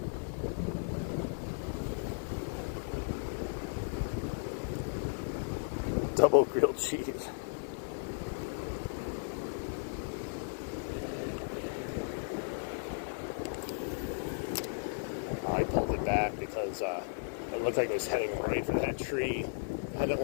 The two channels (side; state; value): right; silent; 54 dB below the other